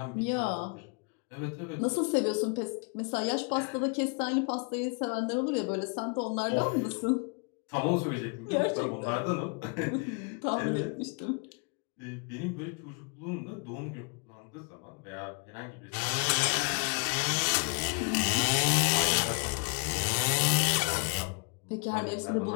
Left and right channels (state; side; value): quieter; right; 35.7 dB